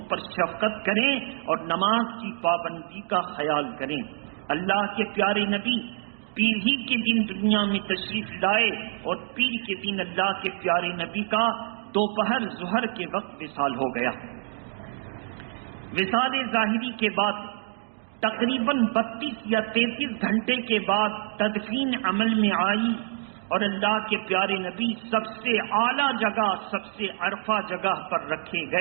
پر شفقت کریں اور نماز کی پابندی کا خیال کریں. اللہ کے پیارے نبی پیر ہی کے دن دنیا میں تشریف لائے اور پیر کے دن اللہ کے پیارے نبی کا دوپہر ظہر کے وقت وصال ہو گیا. وصال ظاہری کے بعد تقریباً 32 یا 33 گھنٹے کے بعد تدفین عمل میں آئی اور اللہ کے پیارے نبی سب سے اعلیٰ جگہ، سب سے عرفہ جگہ پر رکھے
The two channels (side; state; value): left; silent; 60 dB below the other